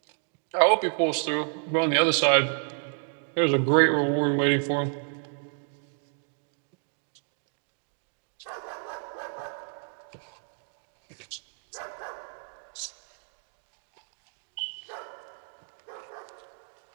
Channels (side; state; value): left; silent; 58 dB below the other